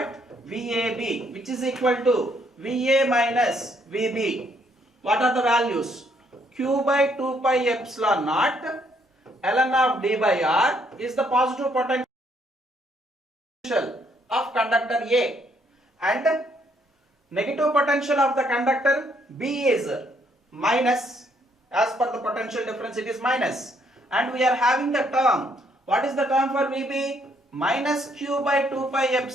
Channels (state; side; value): normal; both; correlation 0.70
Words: VAB, which is equal to VA minus VB. What are the values? Q by 2 pi epsilon naught ln of d by r is the positive potential of conductor A, and negative potential of the conductor B is minus. As per the potential difference, it is minus, and we are having the term. What is the term for VB? Minus q by 2 pi